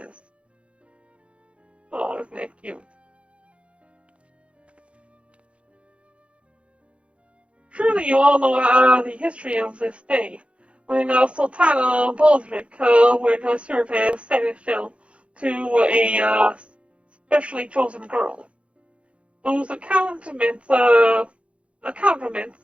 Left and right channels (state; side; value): late; left; 0.061 ms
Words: Oh, isn't that cute? Surely you all know the history of this day, when Sultana Baldric would serve as seneschal to a specially chosen girl. Those accoutrements